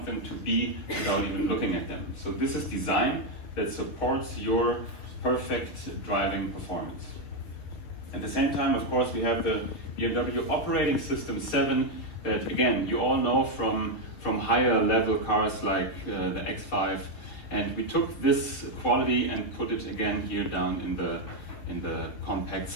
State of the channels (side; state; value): right; late; 6.6 ms